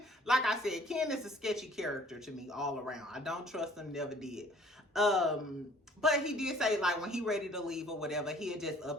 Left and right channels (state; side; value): normal; both; correlation 0.55